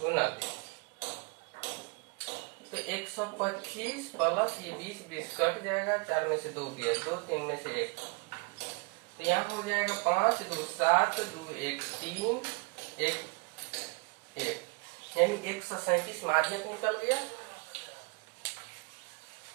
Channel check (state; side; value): quieter; left; 31.7 dB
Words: गुना 20। तो 125 प्लस ये 20 कट जाएगा, 4 में से 2 गया, 2 3 में से 1, तो यहाँ हो जाएगा 5 2 7 2 1 3 1 1, यानी 137 माध्यक निकल गया।